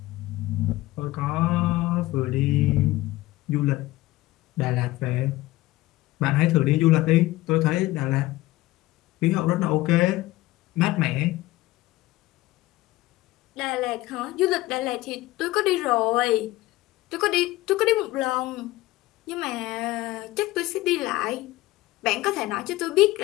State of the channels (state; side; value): quieter; right; 18.0 dB